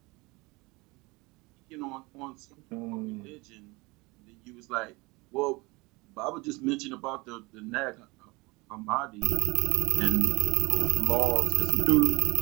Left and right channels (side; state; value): left; quieter; 24.5 dB